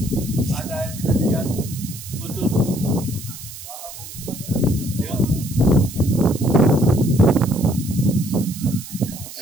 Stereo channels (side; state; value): right; noise; hiss, 13 dB below the sound